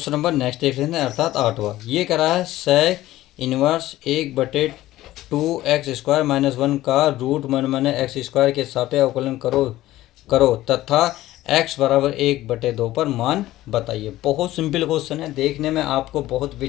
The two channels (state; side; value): quieter; right; 15.6 dB